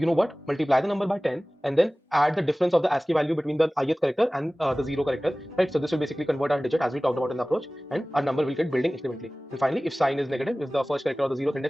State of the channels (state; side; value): normal; both; correlation 0.98